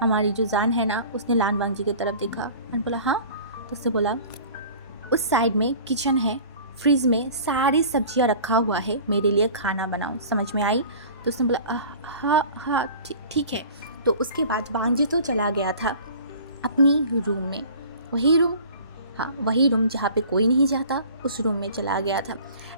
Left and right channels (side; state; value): both; inverted; correlation -0.44